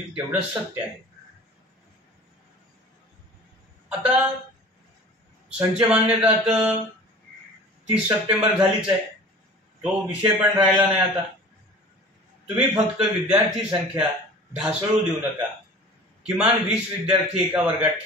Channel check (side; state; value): both; normal; correlation 0.42